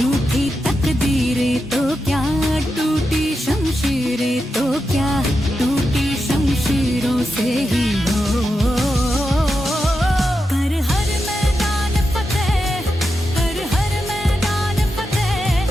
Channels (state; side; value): normal; both; correlation 0.88